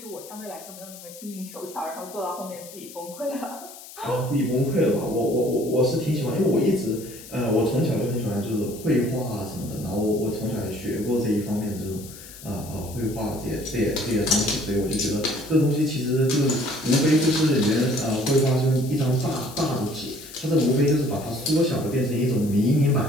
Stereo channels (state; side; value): noise; left; hiss, 16 dB below the sound